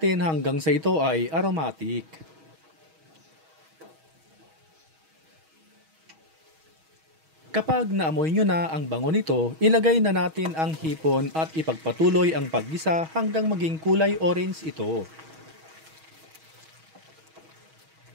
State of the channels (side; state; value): left; late; 6.3 ms